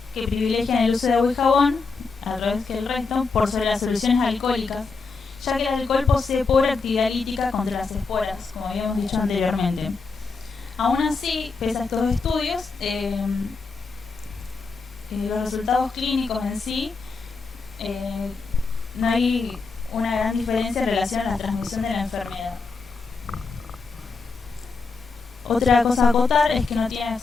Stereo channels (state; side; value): quieter; right; 4.4 dB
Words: que privilegian el uso de agua y jabón a través que el resto por sobre las soluciones alcohólicas, ya que el alcohol posee pobre actividad lítica contra las esporas, como habíamos dicho anteriormente. Aún así, pese a estos estudios, los resultados clínicos en sí, no hay una gran diferencia en relación a la transmisión de la enfermedad. Otra cosa a acotar es que no tiene